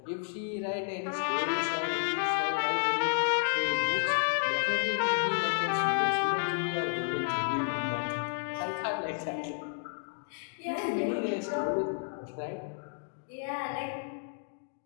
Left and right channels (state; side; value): silent; right; digital silence